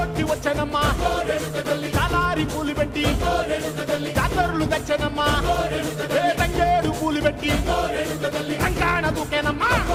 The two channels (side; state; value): both; identical; correlation 1.00